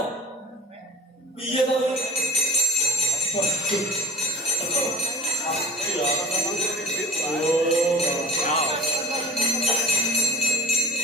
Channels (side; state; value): both; normal; correlation 0.40